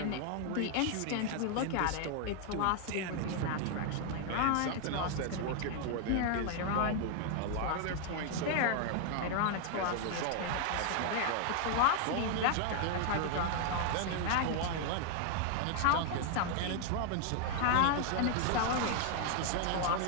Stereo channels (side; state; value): both; different; correlation 0.00